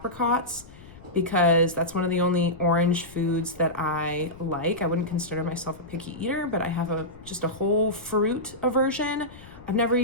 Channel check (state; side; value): noise; left; rumble, 20 dB below the sound